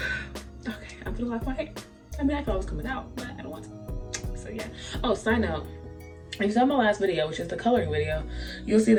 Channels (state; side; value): identical; both; correlation 1.00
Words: Okay, I'm gonna lock my hair. I mean, I thought it was coming out, but I don't want to. So yeah. Oh, side note. If you saw my last video, which is the coloring video, you'll see